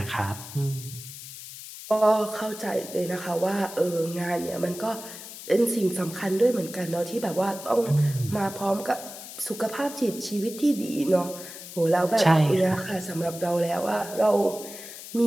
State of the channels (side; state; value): left; noise; hiss, 13 dB below the sound